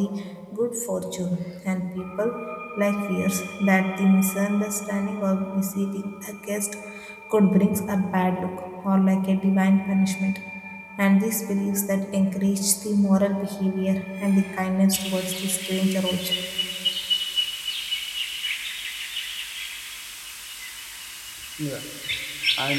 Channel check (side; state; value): both; identical; correlation 1.00